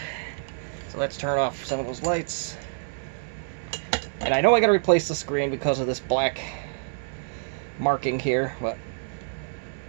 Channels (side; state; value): left; silent; digital silence